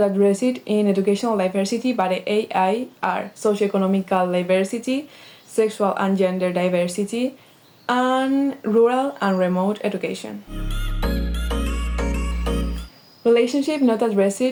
addressed in educational diversity by the AI are socioeconomical diversity, sexual and gender diversity, and rural and remote education. Relationships not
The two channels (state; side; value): identical; both; correlation 1.00